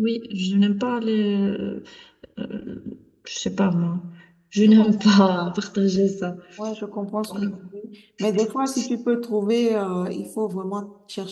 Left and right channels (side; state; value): both; identical; correlation 1.00